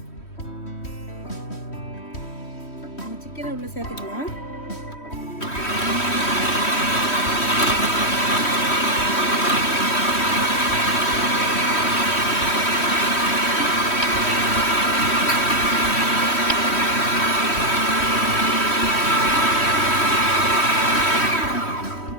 சிக்கனை உள்ள சேர்த்துக்கலாம்.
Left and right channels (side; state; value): right; late; 3.1 ms